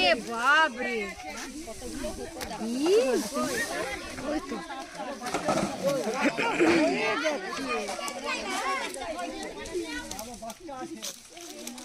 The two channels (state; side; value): identical; both; correlation 1.00